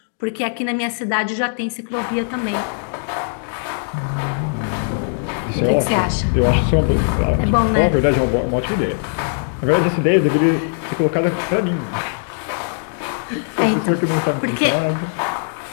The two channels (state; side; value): silent; right; 66 dB below the other